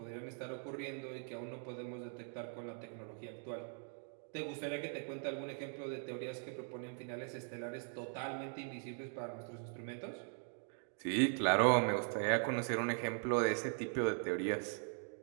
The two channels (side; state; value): left; silent; 51 dB below the other